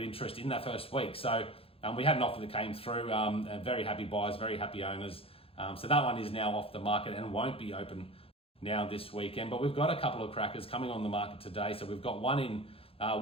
interest in that first week. So we had an offer that came through, very happy buyers, very happy owners. So that one is now off the market and won't be open now this weekend. But we've got a couple of crackers coming on the market today. So we've got one in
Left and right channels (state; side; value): late; right; 0.27 ms